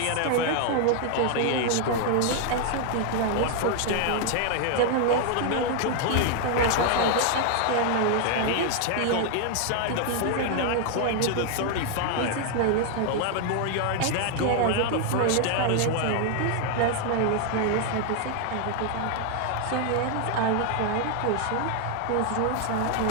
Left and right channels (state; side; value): different; both; correlation 0.00